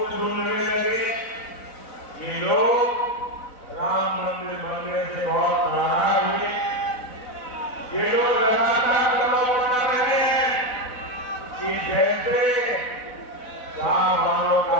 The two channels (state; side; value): late; right; 4.0 ms